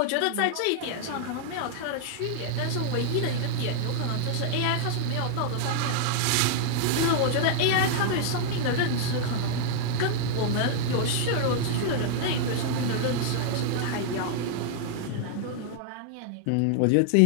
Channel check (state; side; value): different; both; correlation -0.01